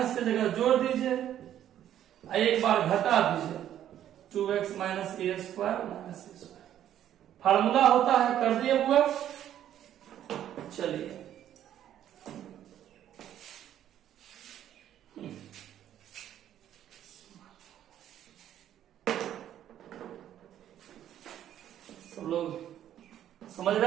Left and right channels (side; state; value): left; quieter; 11.1 dB